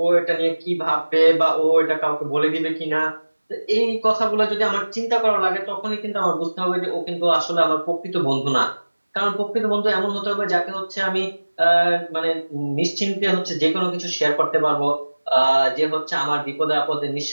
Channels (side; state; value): both; inverted; correlation -1.00